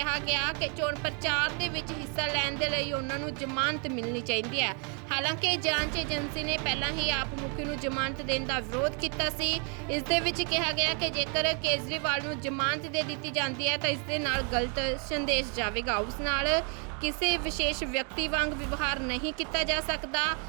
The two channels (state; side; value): quieter; left; 38.1 dB